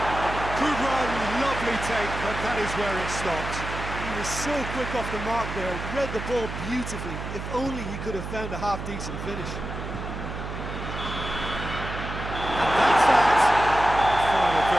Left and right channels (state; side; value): noise; right; hum, 7 dB below the sound